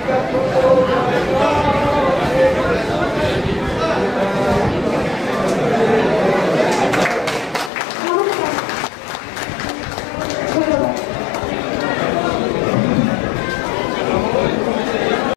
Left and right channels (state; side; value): drops out; right; at 7.7 s